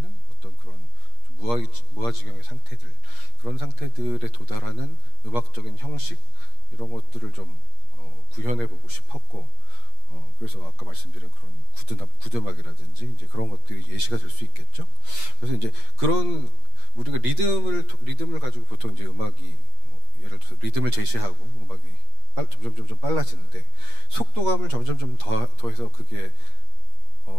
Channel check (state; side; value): late; left; 8.4 ms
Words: 어떤 그런 무아지경의 상태들 그런 상태들에 도달하는 음악적인 형식 이런 것들을 좀 구현해보고 싶었고 그래서 아까 말씀드린 그런 구드음악이라든지 이제 그런 것들이 예시가 될 수 있겠죠. 그래서 이제 그런 우리가 리듬을 가지고 보통 이제 음악이 예를 들어서 리듬을 제시하고 음악이 점점 빨라지는데 속도감을 점점 더해서 그게